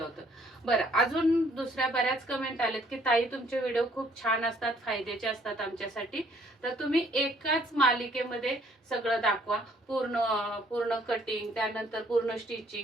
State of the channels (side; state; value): both; normal; correlation 0.63